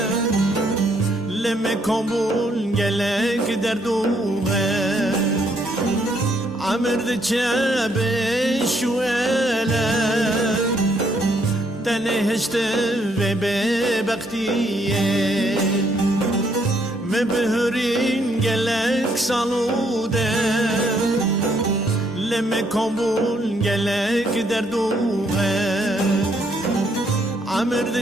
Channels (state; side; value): normal; both; correlation 0.71